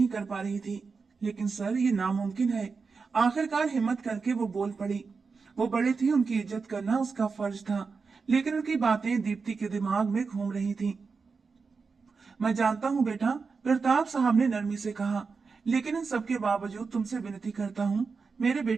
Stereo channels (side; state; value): left; quieter; 4.9 dB